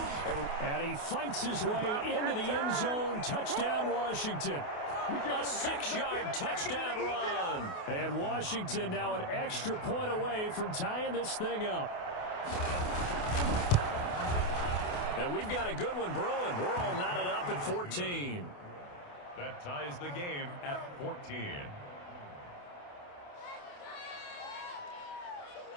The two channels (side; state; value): right; late; 28 ms